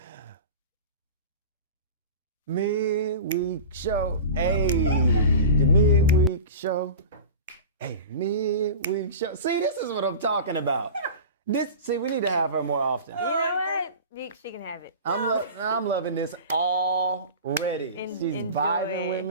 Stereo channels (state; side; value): inverted; both; correlation -0.33